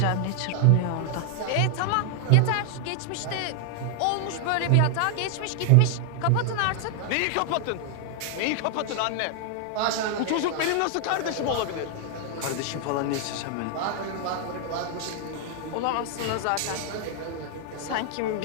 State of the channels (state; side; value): different; both; correlation 0.00